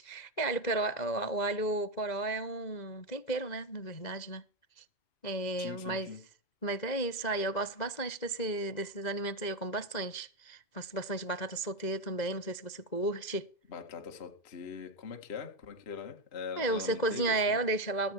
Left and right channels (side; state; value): right; late; 2.0 ms